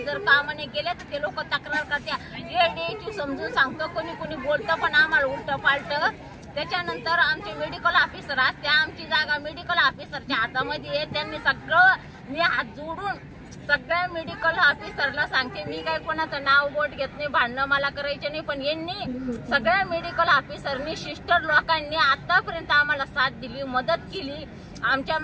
जर काम नाही केले तर ते लोक तक्रार करत्या. एडीएचयू समजून सांगतो, कोणी बोलतं पण आम्हाला उलट पालट. त्याच्यानंतर आमचे मेडिकल ऑफिसर असते, आमची जागा मेडिकल ऑफिसरच्या हातामध्ये आहे. त्यांनी सगळं, मी हात जोडून सगळ्या मेडिकल ऑफिसरला सांगते, मी काय कोणाचं नाव बोट घेत नाही, भांडणं मला करायचे नाही. पण यांनी सगळ्या मेडिकल ऑफिसरनी, सिस्टर लोकांनी आतापर्यंत आम्हाला साथ दिली, मदत केली. आमच्या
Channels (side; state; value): both; identical; correlation 1.00